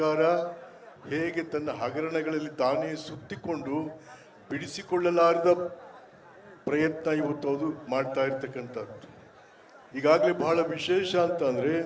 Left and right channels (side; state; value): both; identical; correlation 1.00